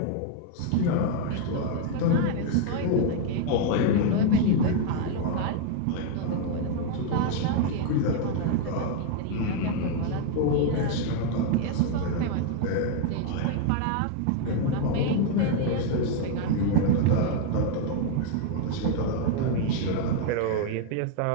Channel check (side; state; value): both; different; correlation 0.00